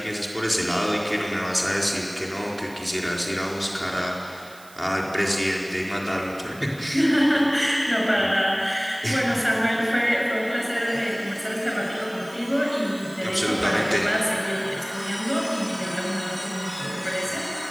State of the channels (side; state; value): right; noise; hiss, 22 dB below the sound